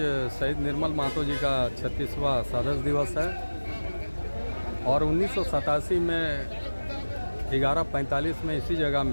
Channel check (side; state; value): both; inverted; correlation -1.00